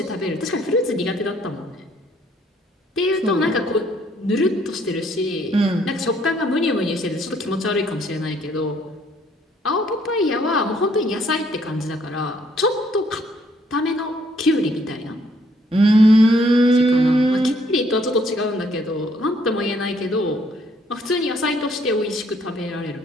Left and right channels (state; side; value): normal; both; correlation 0.66